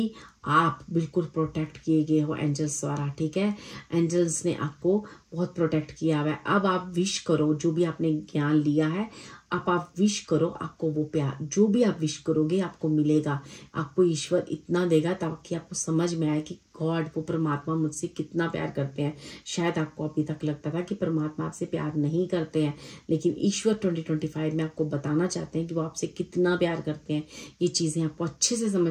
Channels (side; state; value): both; identical; correlation 1.00